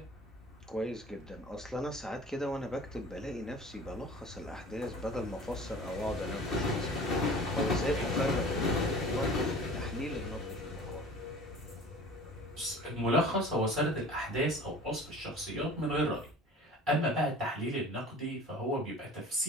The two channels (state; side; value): normal; both; correlation 0.43